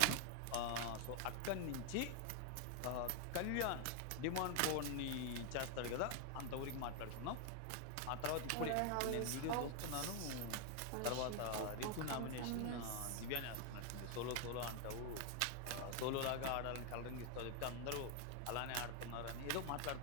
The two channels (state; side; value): different; both; correlation 0.00